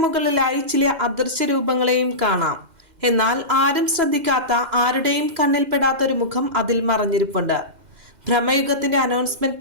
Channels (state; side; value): late; left; 2.0 ms